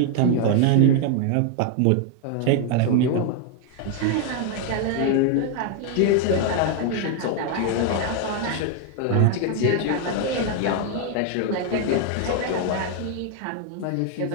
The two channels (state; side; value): different; both; correlation 0.00